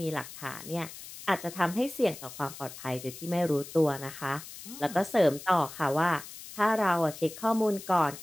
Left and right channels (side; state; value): left; noise; hiss, 14 dB below the sound